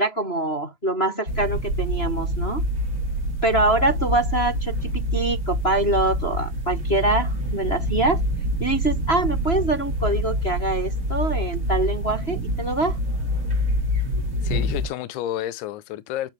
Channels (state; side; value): late; right; 2.9 ms